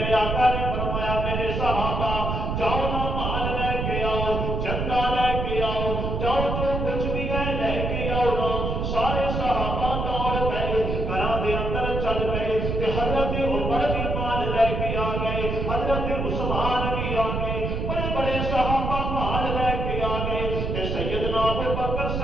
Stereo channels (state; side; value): noise; right; rumble, 2 dB below the sound